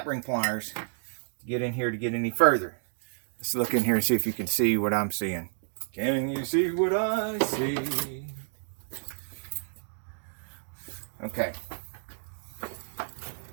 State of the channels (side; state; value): left; silent; digital silence